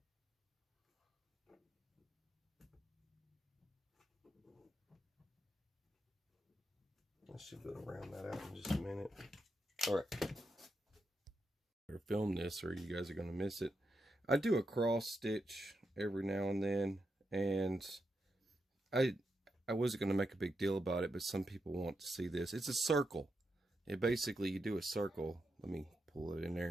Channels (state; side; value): normal; both; correlation 0.85